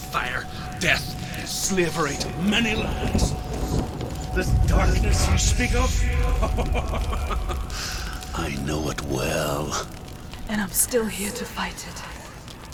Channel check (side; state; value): both; identical; correlation 1.00